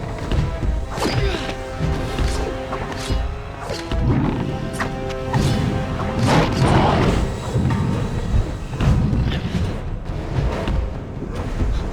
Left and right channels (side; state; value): both; identical; correlation 1.00